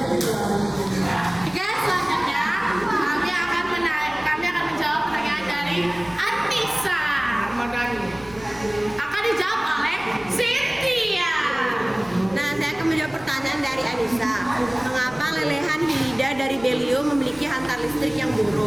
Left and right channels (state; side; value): noise; right; rumble, 23 dB below the sound